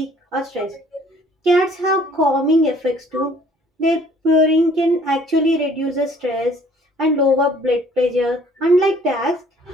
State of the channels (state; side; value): normal; both; correlation 0.57